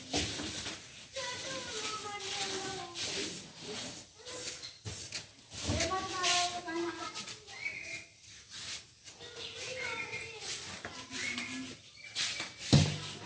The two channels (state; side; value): identical; both; correlation 1.00